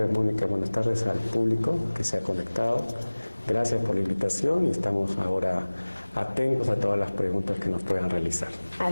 Mónica. Buenas tardes al público que se ha conectado. Gracias por la invitación y estamos ahora atentos a todas las preguntas que nos puedan realizar.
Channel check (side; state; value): both; inverted; correlation -1.00